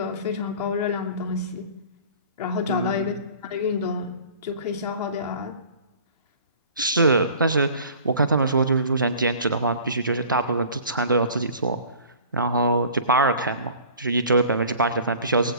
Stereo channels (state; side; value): inverted; both; correlation -0.46